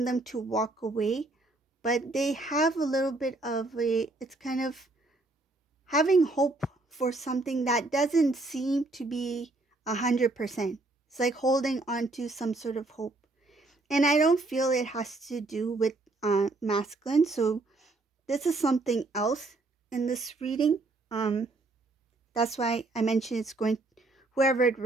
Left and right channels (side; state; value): left; quieter; 3.1 dB